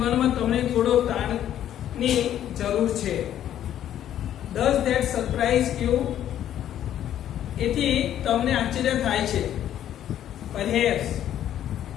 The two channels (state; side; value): quieter; right; 11.1 dB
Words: તમને થોડો તાણની જરૂર છે. Does that surprise you. એથી તમને આશ્ચર્ય થાય છે. Perhaps